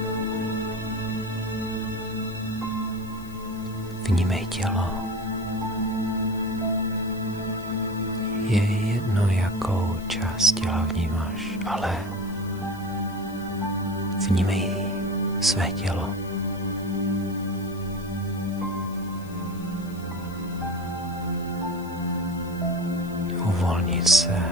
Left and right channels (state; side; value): noise; left; hiss, 23 dB below the sound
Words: Vnímej tělo. Je jedno, jakou část těla vnímáš, ale vnímej své tělo. Uvolnit se,